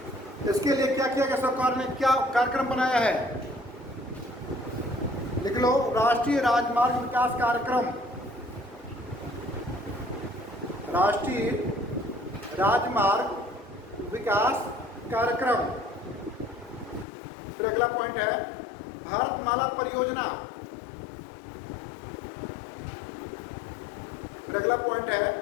इसके लिए क्या किया गया? सरकार ने क्या कार्यक्रम बनाया है? लिख लो, राष्ट्रीय राजमार्ग विकास कार्यक्रम। राष्ट्रीय राजमार्ग विकास कार्यक्रम। फिर अगला पॉइंट है भारतमाला परियोजना। फिर अगला पॉइंट है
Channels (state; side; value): drops out; right; at 17.1 s